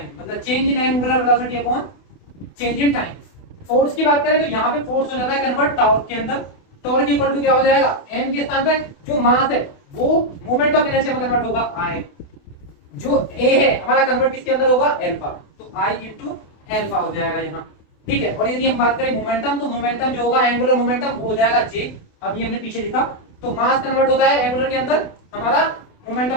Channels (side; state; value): right; late; 28 ms